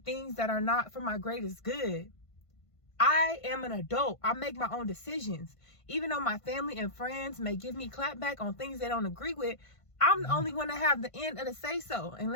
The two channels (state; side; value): late; right; 1.5 ms